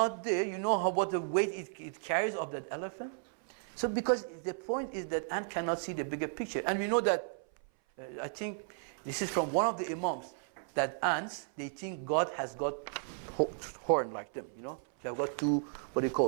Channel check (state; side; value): silent; left; 55 dB below the other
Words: there, you know what the weight it carries of that elephant. So because the point is that ant cannot see the bigger picture, and we know that. I think this is from one of the imams, that ants, they think God has got horn like them, you know. They have got two, what do you